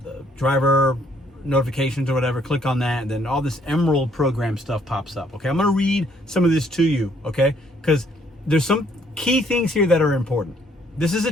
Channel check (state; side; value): normal; both; correlation 0.66